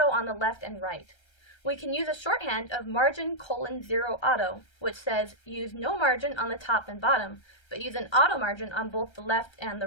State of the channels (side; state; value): right; late; 1.3 ms